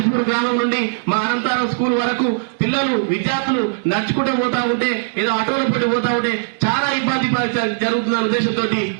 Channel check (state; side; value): silent; left; digital silence